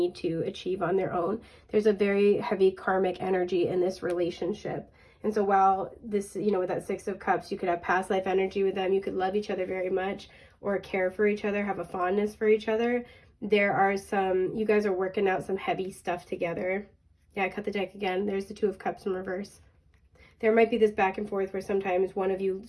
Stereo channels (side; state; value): both; identical; correlation 1.00